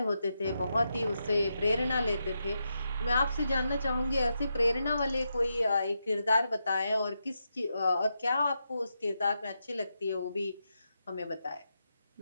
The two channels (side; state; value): both; inverted; correlation -0.86